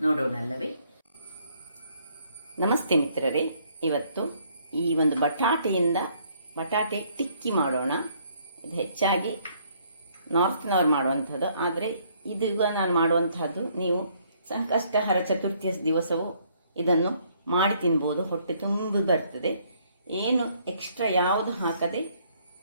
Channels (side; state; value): both; inverted; correlation -0.66